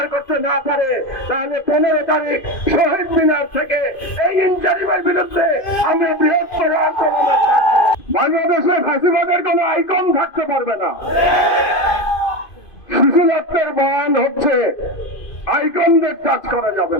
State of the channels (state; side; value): late; right; 2.5 ms